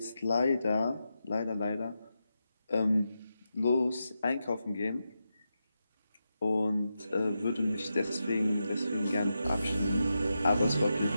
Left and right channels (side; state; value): both; inverted; correlation -0.88